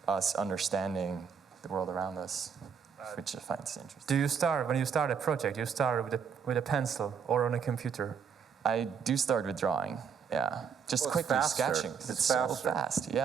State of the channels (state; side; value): quieter; left; 6.7 dB